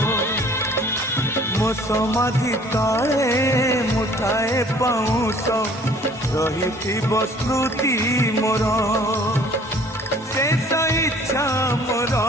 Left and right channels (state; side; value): normal; both; correlation 0.54